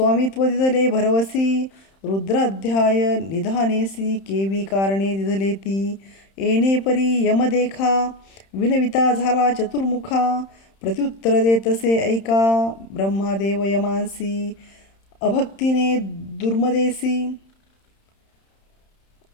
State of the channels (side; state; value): right; late; 31 ms